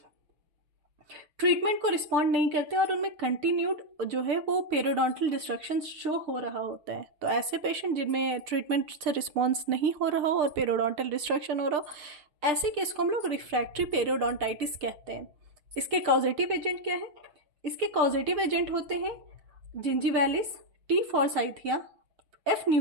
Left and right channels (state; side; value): late; left; 6.7 ms